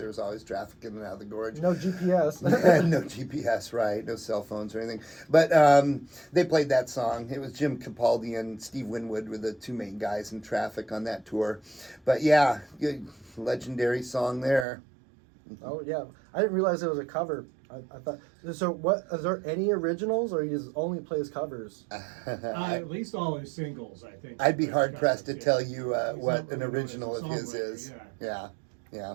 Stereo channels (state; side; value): drops out; left; at 14.7 s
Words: was always traffic in and out of the Gorge. No GPS. No GPS, right? No cell phones or anything. But they played that song. It was Jim Capaldi and Steve Winwood were the two main guys in Traffic on that tour. But yeah, good, legendary song there. Oh yeah, I didn't realize it was a cover. I thought so. What is there any originals, or he just only plays covers? At least all his singles, I think. I'd be hard pressed to Yeah. tell you He's what not an really known original as a of his songwriter, is. yeah. Yeah.